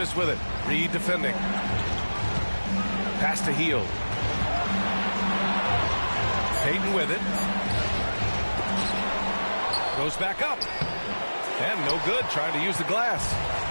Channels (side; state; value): both; inverted; correlation -1.00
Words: with it. Reed defending. Pass to Hield. Payton with it. Goes back up. And no good, trying to use the glass.